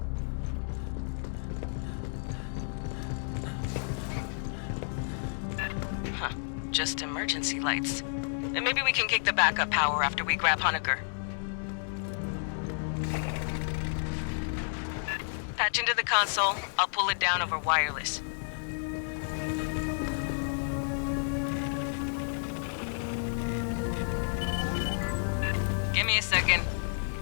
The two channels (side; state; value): right; silent; digital silence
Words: Huh. Just emergency lights. And maybe we can kick the backup power after we grab Honecker. Patch into the console. I'll pull it down over wireless. Give me a second.